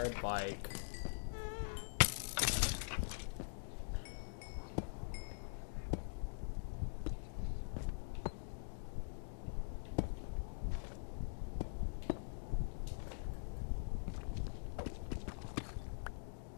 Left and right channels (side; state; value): right; silent; digital silence